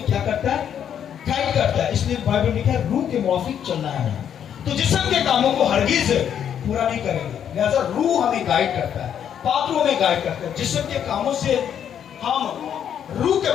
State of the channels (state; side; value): quieter; right; 9.0 dB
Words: کیا کرتا ہے، گائیڈ کرتا ہے. اس لیے بائبل میں لکھا ہے روح کے موافق چلنا ہے. تو جسم کے کاموں کو ہرگز پورا نہیں کریں گے. لہذا روح ہمیں گائیڈ کرتا ہے، پاک روح ہمیں گائیڈ کرتا ہے. جسم کے کاموں سے ہم روح کے